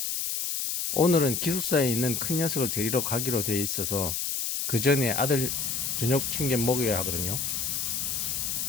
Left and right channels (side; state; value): left; noise; hiss, 1 dB below the sound